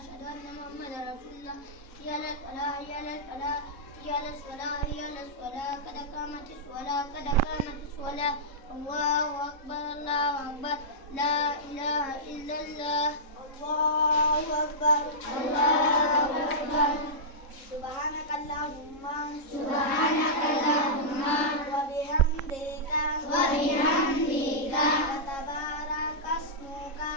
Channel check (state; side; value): late; right; 3.7 ms